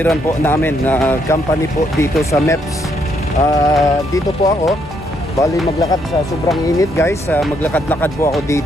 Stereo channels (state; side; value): normal; both; correlation 0.73